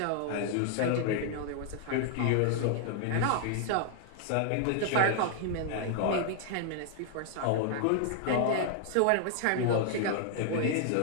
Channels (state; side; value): different; both; correlation 0.00